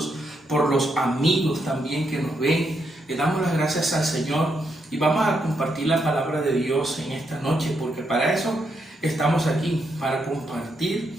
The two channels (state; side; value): normal; both; correlation 0.80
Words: por los amigos también que nos ven. Le damos las gracias al Señor y vamos a compartir la palabra de Dios en esta noche, porque para eso estamos aquí, para